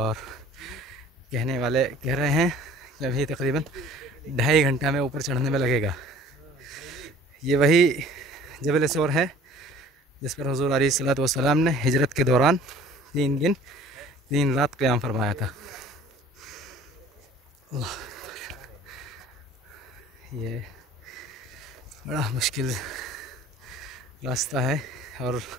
कहने वाले कह रहे हैं कि अभी तकरीबन 2.5 घंटा में ऊपर चढ़ने में लगेगा। ये वही जबल सौर है जिस पर हुज़ूर अलैहिस्सलातु वस्सलाम ने हिजरत के दौरान 3 दिन 3 रात क़याम फरमाया था। ये बड़ा मुश्किल रास्ता है, और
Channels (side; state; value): both; normal; correlation 0.49